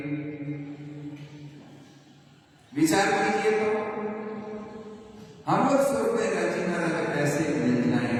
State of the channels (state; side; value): identical; both; correlation 1.00